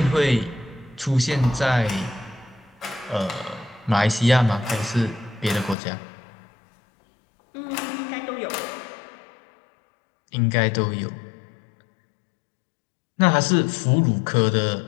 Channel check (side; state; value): right; drops out; at 5.8 s